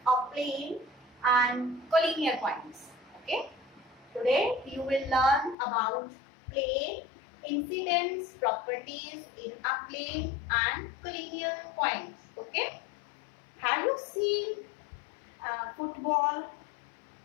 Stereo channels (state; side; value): drops out; right; at 5.6 s